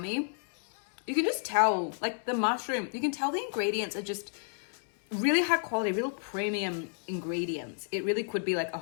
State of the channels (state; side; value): silent; right; digital silence